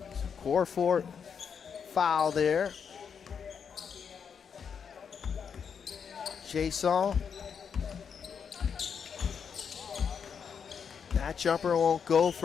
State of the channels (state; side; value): quieter; right; 6.9 dB